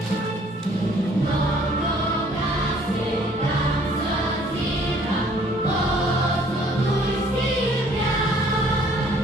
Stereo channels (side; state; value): both; normal; correlation 0.59